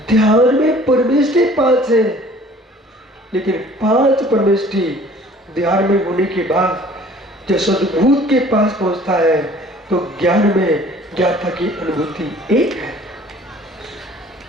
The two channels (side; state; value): both; normal; correlation 0.51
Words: ध्यान में परमेष्टि 5 है, लेकिन 5 परमेष्टि ध्यान में होने के बाद जब सद्भूत के पास पहुंचता है तो ज्ञान में ज्ञाता की अनुभूति 1 है।